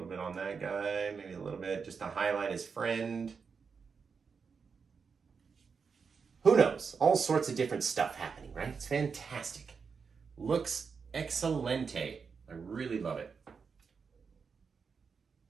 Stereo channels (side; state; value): left; quieter; 5.6 dB